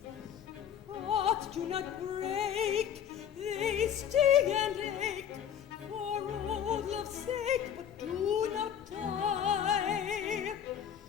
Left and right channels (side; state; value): right; quieter; 8.9 dB